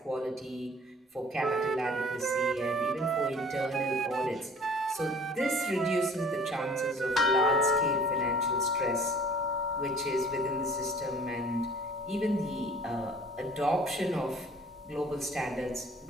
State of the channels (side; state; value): both; normal; correlation 0.50